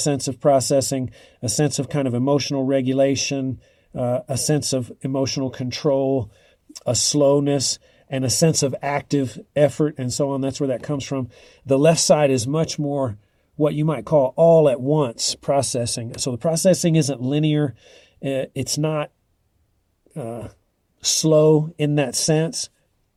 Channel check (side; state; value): both; identical; correlation 1.00